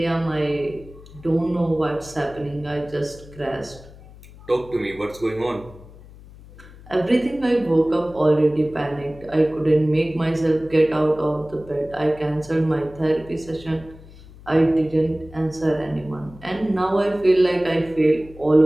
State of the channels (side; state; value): left; noise; hum, 20 dB below the sound